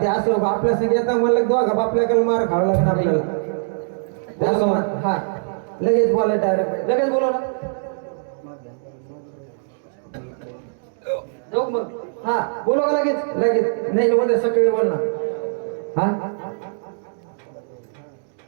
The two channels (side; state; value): left; silent; digital silence